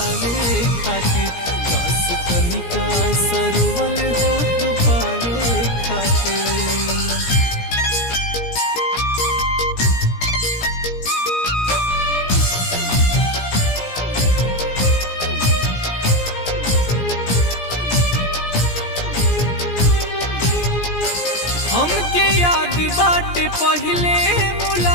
खातिर, काश तनिका सरोवले हो तू पावे खातिर। हमके याद बाटे पहले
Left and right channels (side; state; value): right; late; 17 ms